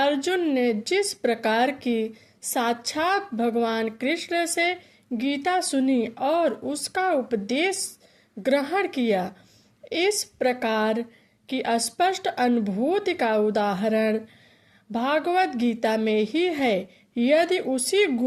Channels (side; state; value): both; identical; correlation 1.00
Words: ने जिस प्रकार की साक्षात भगवान कृष्ण से गीता सुनी और उसका उपदेश ग्रहण किया, इस प्रकार की स्पष्ट अनुभूति का उदाहरण भागवत गीता में ही है। यदि उसी